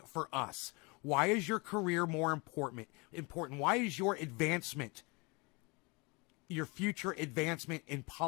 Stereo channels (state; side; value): quieter; right; 28.5 dB